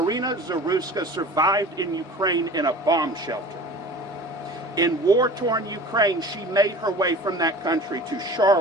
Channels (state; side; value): normal; both; correlation 0.41